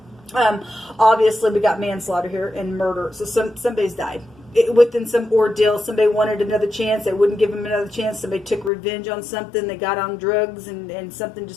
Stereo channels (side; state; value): right; drops out; at 8.7 s